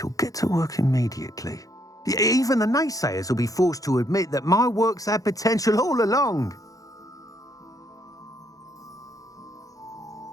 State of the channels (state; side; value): late; right; 0.17 ms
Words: get to work immediately. Even the naysayers will be forced to admit that my work's had potential all along.